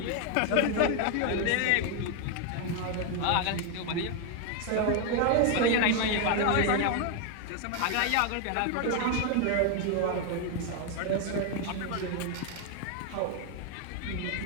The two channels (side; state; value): both; different; correlation 0.01